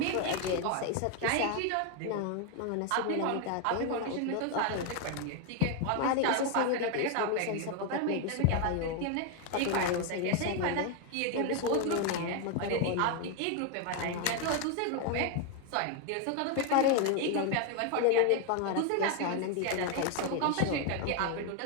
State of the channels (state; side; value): different; both; correlation 0.01